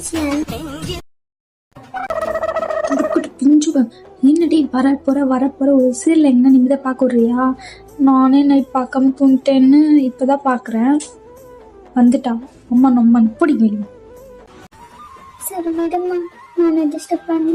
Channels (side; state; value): both; identical; correlation 1.00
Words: பிஞ்சுவன் என்னடி வரப்போற ஒரு சீரியல் எங்க நிம்மதியா பார்க்க விடுறியா? நானே நைட் பார்க்காம தூங்கிட்டேன்னு இப்பதான் பாக்குறேன். வந்துட்டா அம்மா நம்ம பிடிக்கும். சரி விடுமா, நான் டிஸ்டர்ப்